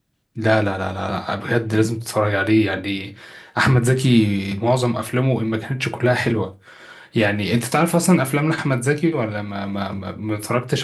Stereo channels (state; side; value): identical; both; correlation 1.00